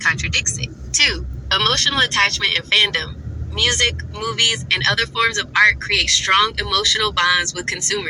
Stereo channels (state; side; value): identical; both; correlation 1.00